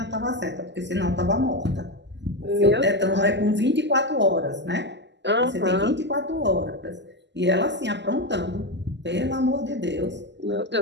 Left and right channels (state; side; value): late; left; 0.51 ms